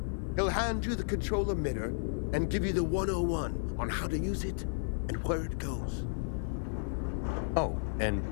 He'll hand you the control emitter and give you the 101 on how to use it and where it goes. Oh, and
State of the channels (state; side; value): silent; right; 56 dB below the other